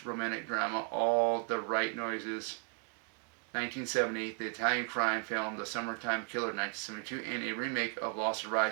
romantic drama All the Right Noises, 1970, the Italian crime film The Summertime Killer, 1972, and a remake of Lost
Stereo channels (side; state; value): left; quieter; 38.2 dB